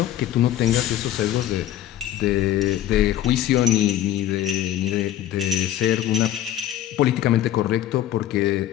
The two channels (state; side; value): quieter; right; 12.3 dB